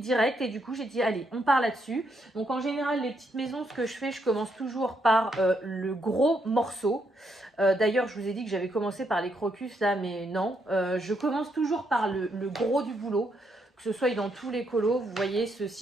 et du coup j'ai dit allez on part là-dessus. Donc en général les petites maisons, ce que je fais, je commence toujours par le gros morceau. D'ailleurs je vous ai dit que j'avais commencé par les crocus là, mais non, je commence toujours par le gros du boulot, que ce soit dans tous les colos. Vous voyez,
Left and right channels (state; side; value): normal; both; correlation 0.77